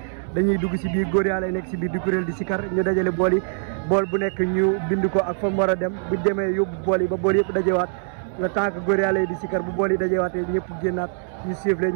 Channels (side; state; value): left; silent; 63 dB below the other